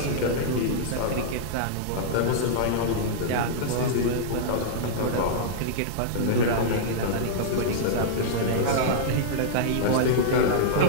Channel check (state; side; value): different; both; correlation -0.02